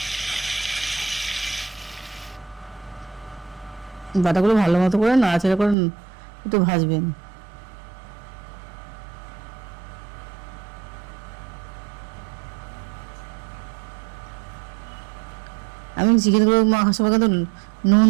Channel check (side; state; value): left; drops out; at 5.8 s